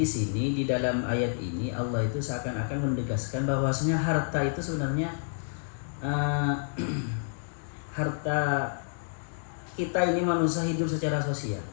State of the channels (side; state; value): right; silent; digital silence